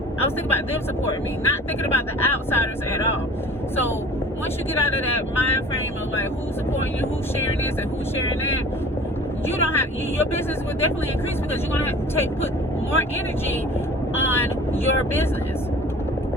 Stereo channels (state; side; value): normal; both; correlation 0.44